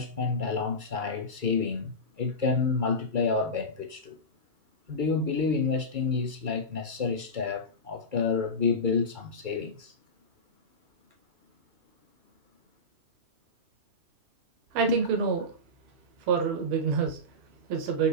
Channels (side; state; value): left; late; 2.3 ms